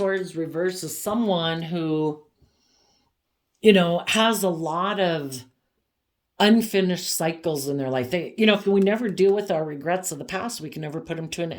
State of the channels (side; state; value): both; identical; correlation 1.00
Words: reverse as someone who, has a lot of unfinished cycles in their life. If we never deal with our regrets of the past, we can never put them to an